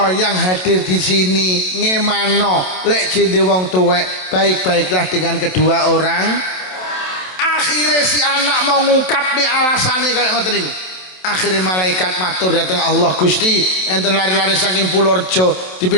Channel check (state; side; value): late; right; 27 ms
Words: yang hadir di sini ngemano lek jende wong tuwek baik-baiklah dengan kedua orang akhirnya si anak mau ngungkap nih alasannya kayak ngoten niku akhirnya malaikat matur datang Allah Gusti enten lari-lari saking Purworejo